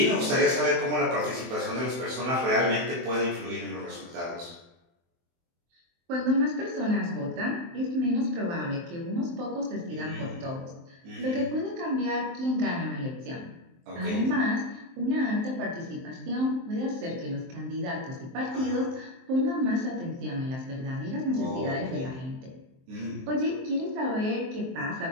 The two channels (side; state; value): left; late; 23 ms